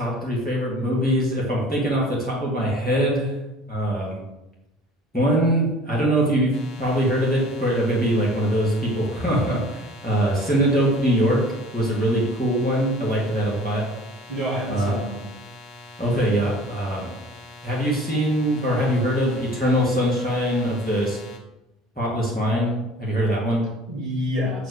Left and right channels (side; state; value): both; normal; correlation 0.48